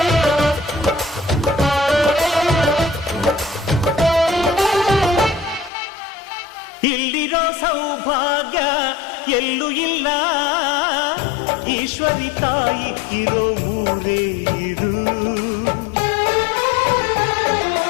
ಇಲ್ಲಿರೋ ಸೌಭಾಗ್ಯ ಎಲ್ಲೂ ಇಲ್ಲ, ಈಶ್ವರಿ ತಾಯಿ ಇರೋ ಊರೇ ಇದು.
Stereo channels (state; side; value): drops out; right; at 5.7 s